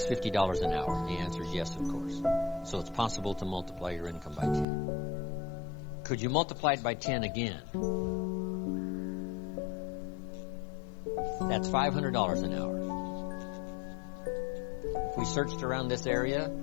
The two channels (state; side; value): drops out; right; at 4.7 s